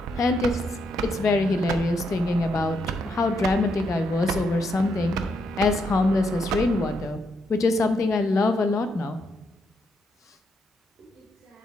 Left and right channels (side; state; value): both; normal; correlation 0.78